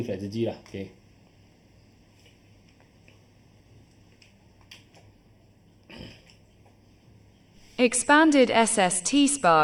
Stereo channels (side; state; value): both; identical; correlation 1.00